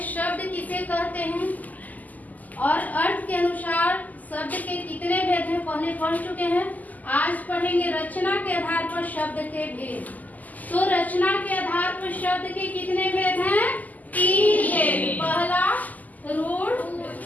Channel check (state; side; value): late; right; 0.080 ms